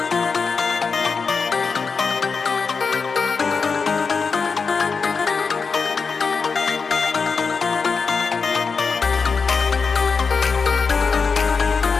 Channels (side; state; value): right; quieter; 5.1 dB